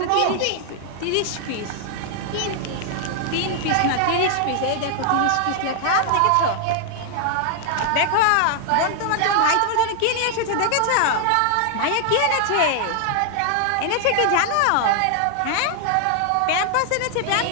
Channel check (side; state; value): both; different; correlation 0.00